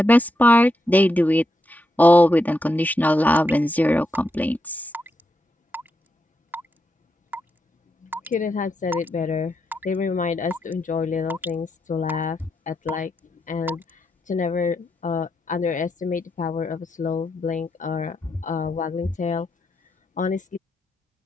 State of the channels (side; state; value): both; normal; correlation 0.83